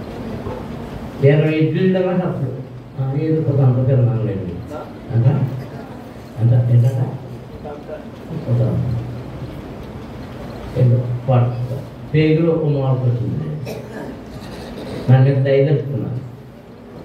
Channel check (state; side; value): identical; both; correlation 1.00